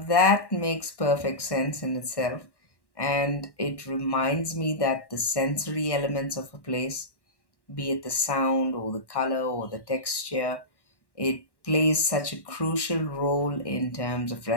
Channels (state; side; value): late; right; 1.1 ms